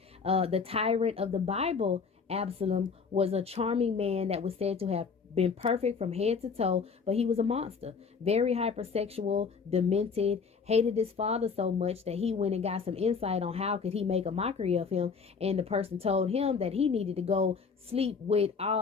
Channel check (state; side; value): quieter; right; 5.4 dB